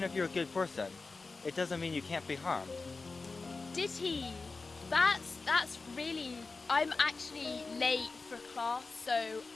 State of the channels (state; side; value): quieter; right; 3.9 dB